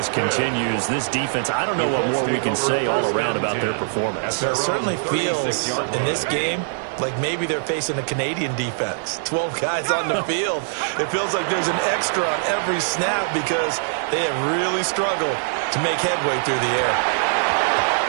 continues. This defense, I don't know what more we can say all around about their performance. It certainly feels in this game like maybe they're facing a Canadian defense. 12 guys on the field. It feels like there's an extra on every snap because they have really struggled to make headway through the air.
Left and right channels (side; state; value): left; silent; 57 dB below the other